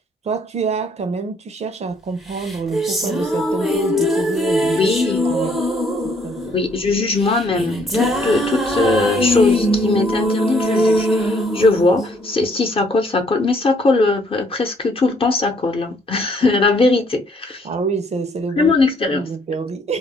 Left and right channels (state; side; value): normal; both; correlation 0.66